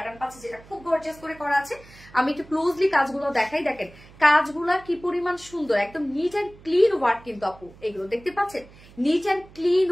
পাচ্ছি যেটা খুব গর্জিয়াস করে করা আছে। আমি একটু ক্লোজলি কাজগুলো দেখাই, দেখেন কাজগুলা কি পরিমাণ সুন্দর, একদম নিট অ্যান্ড ক্লিন ওয়ার্ক কিন্তু আপু, এগুলো দেখতে পাচ্ছেন, নিট অ্যান্ড ক্লিন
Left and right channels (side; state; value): right; noise; hum, 23 dB below the sound